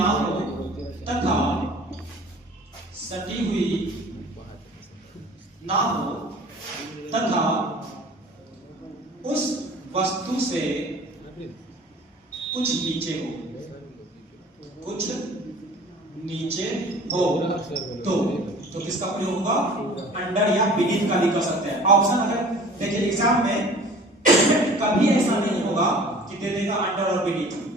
तथा सटी हुई ना हो तथा उस वस्तु से कुछ नीचे हो तो किसका प्रयोग होगा? अंडर या बीनीथ का भी कर सकते हैं। ऑप्शन अगर देखिए एग्जाम में कभी ऐसा नहीं होगा कि दे देगा अंडर और बीनीथ,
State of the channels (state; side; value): normal; both; correlation 0.46